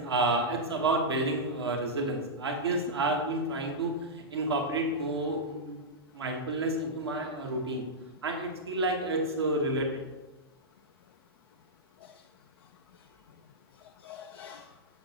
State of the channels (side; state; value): both; normal; correlation -0.08